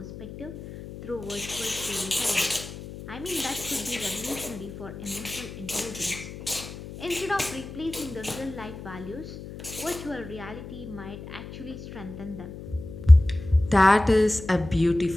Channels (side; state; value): left; noise; hum, 12 dB below the sound